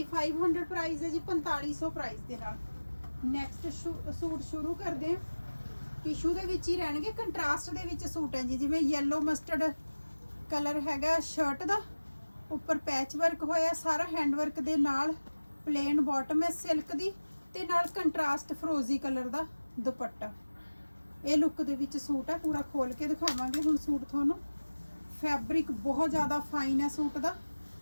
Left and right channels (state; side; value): inverted; both; correlation -1.00